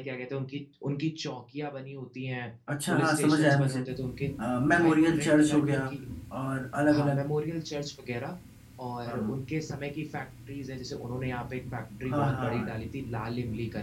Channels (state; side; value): identical; both; correlation 1.00